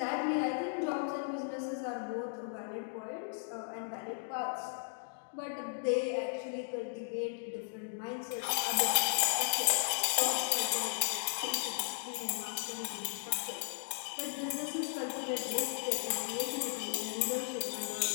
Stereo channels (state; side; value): silent; right; digital silence